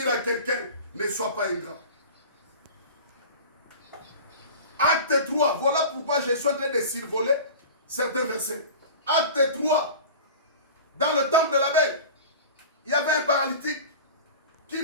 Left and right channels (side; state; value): both; inverted; correlation -0.36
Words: à quelqu'un, ne sois pas ingrat. Acte 3, voilà pourquoi je suis en train de survoler certains versets. Acte 3, dans le temple de la Belle, il y avait un paralytique qui